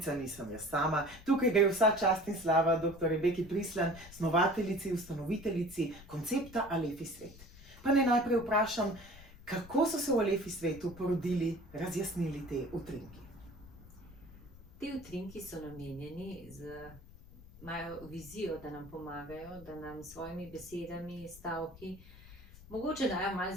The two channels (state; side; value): noise; left; rumble, 19 dB below the sound